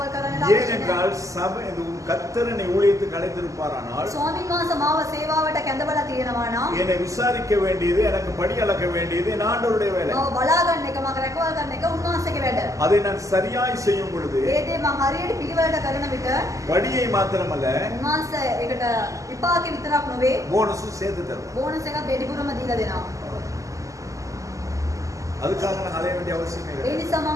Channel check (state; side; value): late; left; 0.16 ms